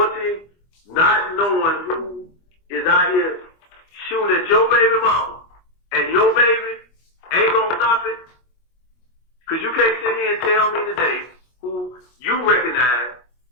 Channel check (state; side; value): late; right; 25 ms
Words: not knowing who is out here shooting at your baby mama and your baby ain't gonna stop it? Because you can't sit here and tell me today who you recognize